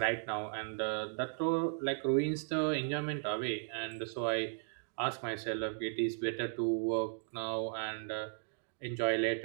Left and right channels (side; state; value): left; silent; digital silence